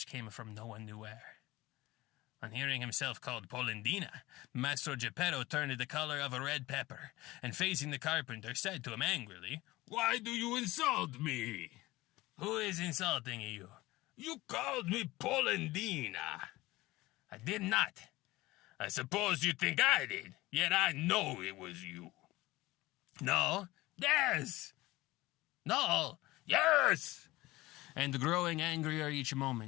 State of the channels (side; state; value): right; quieter; 19.1 dB